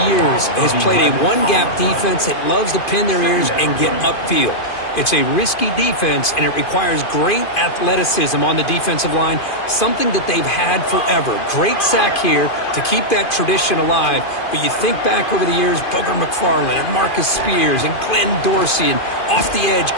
years has played a one-gap defense that loves to pin their ears and get upfield. It's a risky defense, and it requires great athleticism on the defensive line, something that they've had forever. Great sack here to keep that tradition alive. But you think back over the years, Booger McFarland and Marcus Spears and Glenn Dorsey and off the edge,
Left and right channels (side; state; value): right; late; 2.5 ms